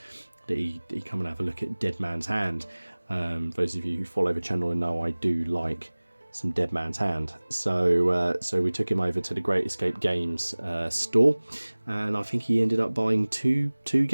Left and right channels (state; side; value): inverted; both; correlation -1.00